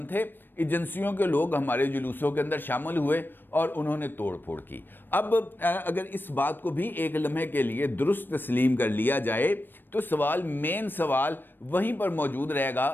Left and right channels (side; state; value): right; late; 0.095 ms